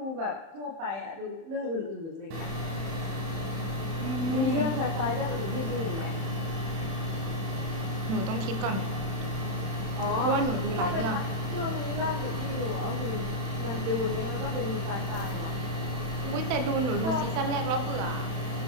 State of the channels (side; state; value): left; late; 31 ms